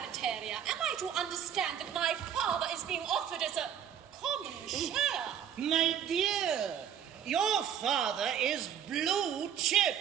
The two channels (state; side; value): quieter; left; 9.1 dB